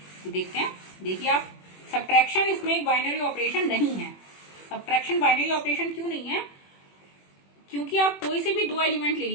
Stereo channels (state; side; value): late; right; 21 ms